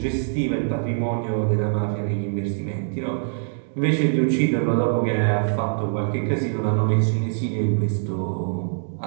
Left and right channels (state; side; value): silent; left; digital silence